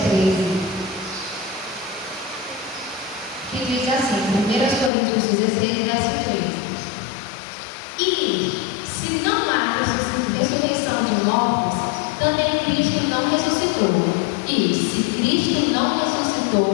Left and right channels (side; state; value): right; drops out; at 4.9 s